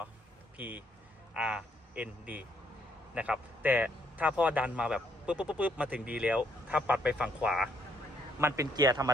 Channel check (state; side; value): normal; both; correlation 0.71